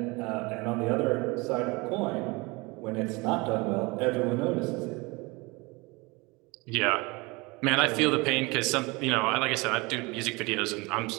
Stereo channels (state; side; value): quieter; left; 25.2 dB